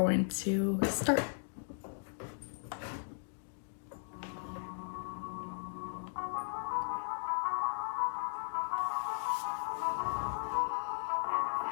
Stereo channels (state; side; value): silent; right; digital silence